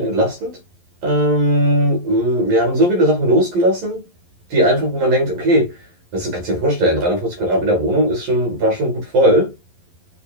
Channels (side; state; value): left; late; 11 ms